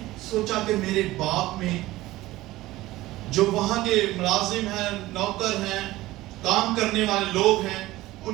سوچا کہ میرے باپ میں جو وہاں کے ملازم ہیں, نوکر ہیں, کام کرنے والے لوگ ہیں,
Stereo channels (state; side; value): quieter; left; 17.4 dB